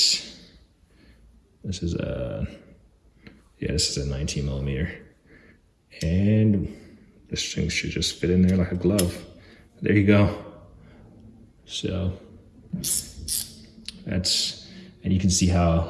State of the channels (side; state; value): both; identical; correlation 1.00